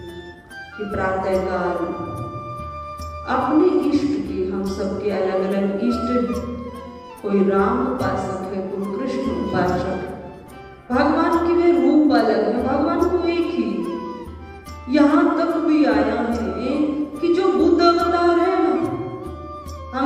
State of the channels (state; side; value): identical; both; correlation 1.00